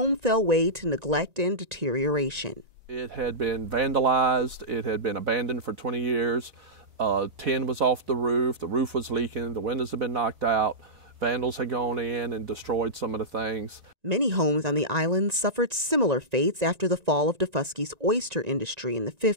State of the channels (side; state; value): left; late; 1.9 ms